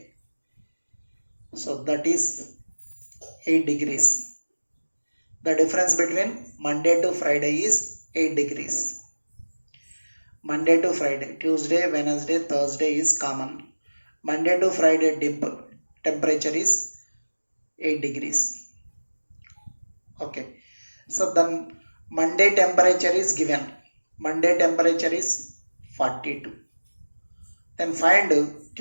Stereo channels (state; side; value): inverted; both; correlation -1.00